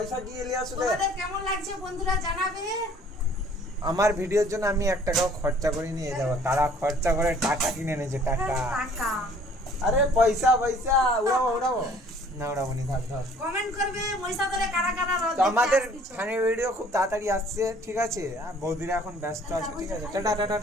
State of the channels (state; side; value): normal; both; correlation 0.55